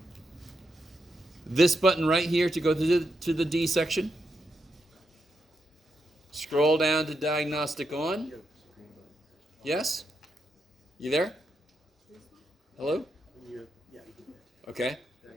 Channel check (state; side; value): normal; both; correlation 0.84